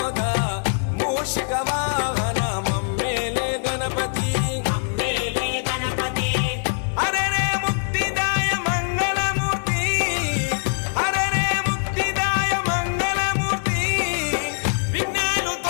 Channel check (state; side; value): silent; right; 63 dB below the other